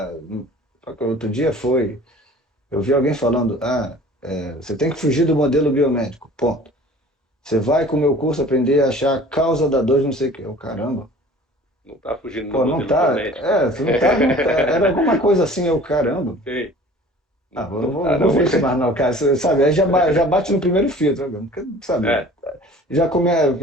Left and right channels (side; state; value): both; normal; correlation 0.46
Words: Outro dia foi. Eu vi alguém falando: você tem que fugir do modelo biomédico. Ponto. Você vai com o meu curso aprender a achar a causa da dor de não sei o quê. Eu, caramba. não tá fugindo do Pô, não modelo tá. biomédico, né? Você não tá. Era alguma coisa assim, eu, caramba. Sim. Não Não vou, tá, não vou não. ver isso mais não, cara. Você sabe, aí já bate no primeiro filtro, né? Porque, sabe? É,